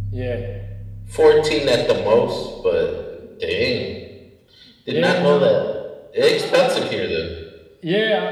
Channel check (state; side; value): identical; both; correlation 1.00